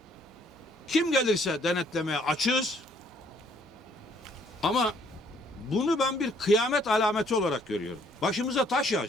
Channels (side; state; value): both; normal; correlation 0.64